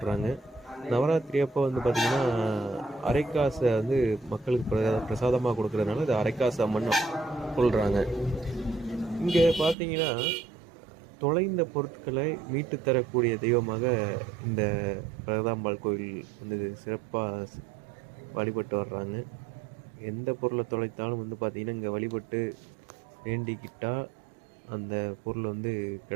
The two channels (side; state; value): left; drops out; at 9.8 s